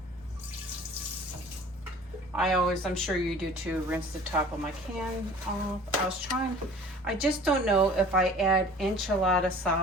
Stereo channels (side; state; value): both; normal; correlation 0.46